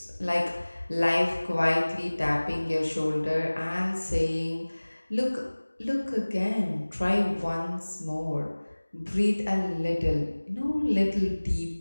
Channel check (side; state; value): both; inverted; correlation -1.00